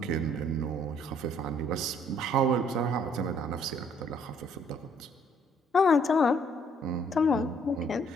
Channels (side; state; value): both; normal; correlation 0.63